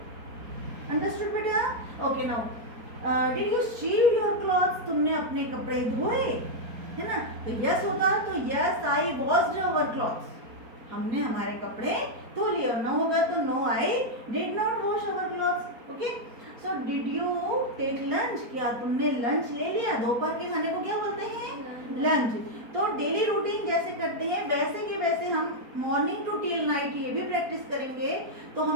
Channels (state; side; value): late; left; 4.3 ms